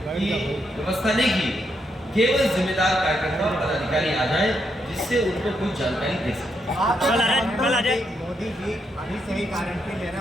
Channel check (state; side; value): normal; both; correlation 0.79